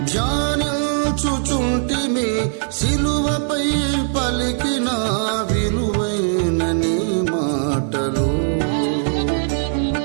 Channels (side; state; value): left; silent; digital silence